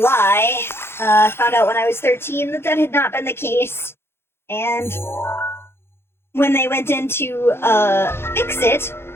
Found out when I was 13 that that had not been the case, and when they went in to fix it,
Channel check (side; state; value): right; late; 0.12 ms